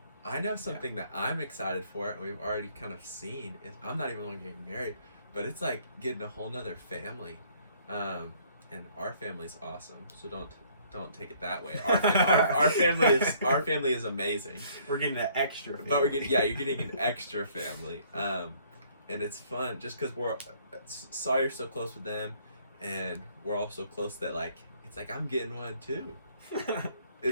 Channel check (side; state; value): both; inverted; correlation -0.62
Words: I know something that I'm excited for, and we've already kind of seen, is I'm not even getting married, but it's getting a whole nother family. And our family's awesome, so don't take it that way. Our family is amazing. We're getting an extra family. But you're getting an extra family. And it's fun just because Sawyer's so close with them, and we're all so close that it's I'm getting one too.